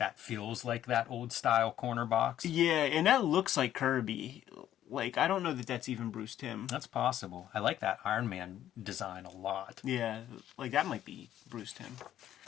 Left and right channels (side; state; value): right; quieter; 11.7 dB